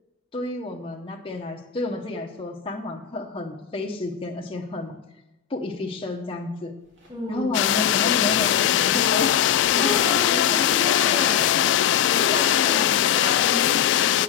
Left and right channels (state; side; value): quieter; right; 8.9 dB